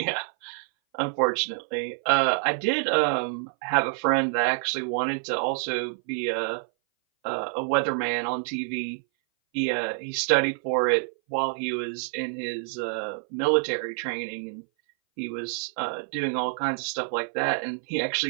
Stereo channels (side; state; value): left; silent; 58 dB below the other